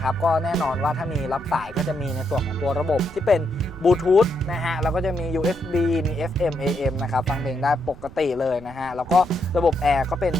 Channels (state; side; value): noise; right; rumble, 18 dB below the sound